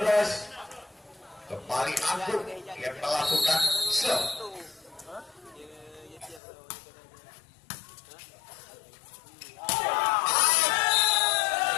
Kembali Agung yang melakukan shot.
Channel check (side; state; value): right; drops out; at 6.4 s